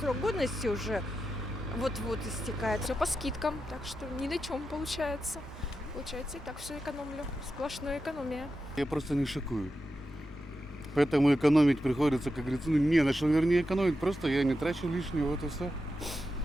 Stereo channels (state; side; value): normal; both; correlation 0.89